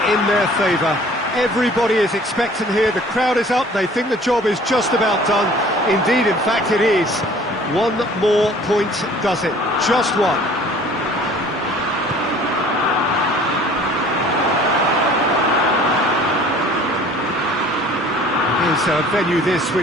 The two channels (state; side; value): normal; both; correlation 0.50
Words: in their favour. Everybody is expectant here, the crowd is up, they think the job is just about done. Indeed, in fact it is. One more point does it, just one. Is a venue this